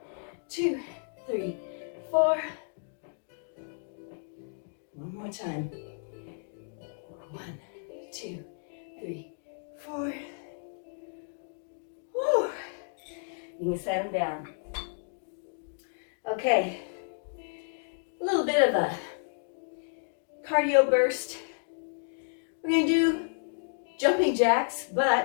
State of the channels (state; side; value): silent; right; digital silence